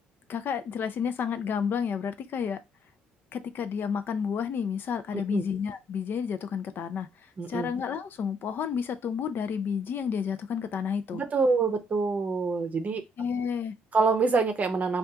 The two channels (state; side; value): normal; both; correlation 0.69